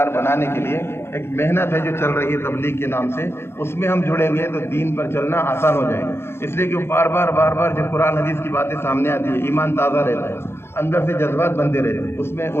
بنانے کے لیے ایک محنت ہے جو چل رہی ہے تبلیغ کے نام سے، اس میں ہم جڑیں گے تو دین پر چلنا آسان ہو جائے گا۔ اس لیے کہ بار بار جب قرآن حدیث کی باتیں سامنے آتی ہے، ایمان تازہ رہتا ہے، اندر سے جذبات بنتے رہتے ہیں، اس میں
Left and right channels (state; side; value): late; right; 0.12 ms